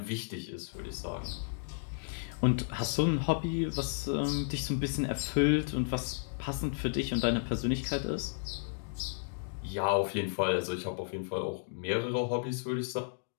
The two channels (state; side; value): silent; right; digital silence